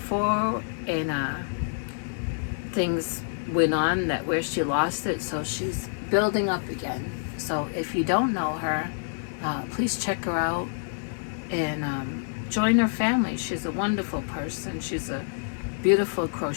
and things went on that where she lost it, so she's building up again. So if you don't know her, please check her out and join her family. She's a wonderful person. She's a beautiful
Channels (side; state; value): right; silent; digital silence